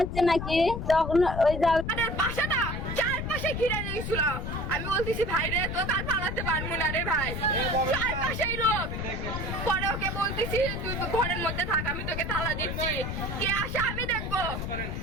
নাকি, তখন ওই আমাদের বাসাটা চারপাশে ঘিরে দিয়েছিল। আমি বলতেছি ভাই রে তো তার পালাতে পারবো না রে ভাই, চারপাশেই লোক। পরে ওকে বলতেছি তুই ঘরের মধ্যে থাক, আমি তোকে তালা দিচ্ছি, কে আসে আমি দেখবো।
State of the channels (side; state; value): left; noise; rumble, 4 dB below the sound